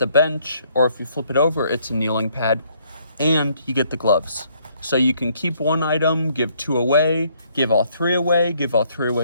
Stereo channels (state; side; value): inverted; both; correlation -0.67